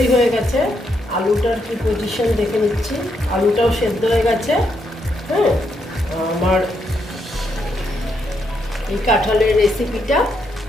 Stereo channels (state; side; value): normal; both; correlation 0.78